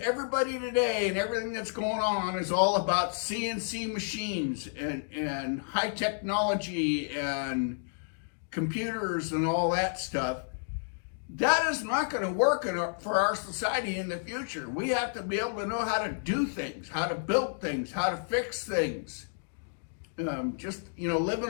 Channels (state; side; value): silent; right; digital silence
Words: everybody today and everything that's going on is all about CNC machines and high technology and computers and all that stuff. That is not going to work for our society in the future. We have to be able to know how to do things, how to build things, how to fix things.